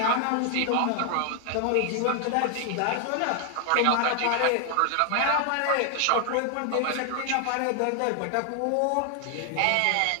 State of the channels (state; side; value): different; both; correlation 0.00